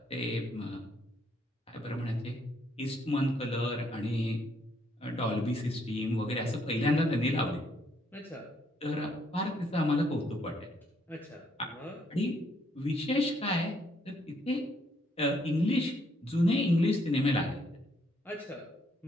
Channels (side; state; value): both; normal; correlation 0.70